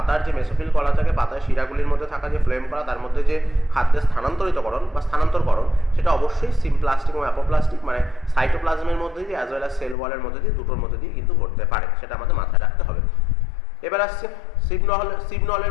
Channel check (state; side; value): drops out; right; at 10.0 s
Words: যে মেসোফিল কলা থাকে, পাতার শিরাগুলির মধ্যে থাকা যে ফ্লোয়েম কলা তার মধ্যে যে খাদ্যের স্থানান্তরিতকরণ বা স্থানান্তরকরণ সেটা অবশ্যই সিমপ্লাস্টিক এবং অ্যাপোপ্লাস্টিক মানে সাইটোপ্লাজমের মধ্যে দিয়ে অ্যাজ ওয়েল অ্যাজ সেল ওয়ালের মধ্যে দিয়ে দুটোর মধ্যে দিয়ে কিন্তু ঘটতে পারে, সেটা আমাদের মাথায় রাখতে হবে। এবার আসছে সিবনলের